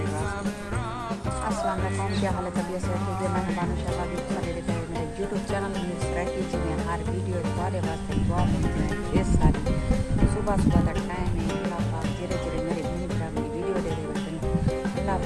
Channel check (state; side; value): identical; both; correlation 1.00